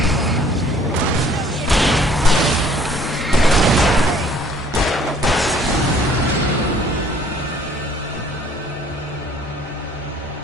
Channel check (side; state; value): both; normal; correlation 0.57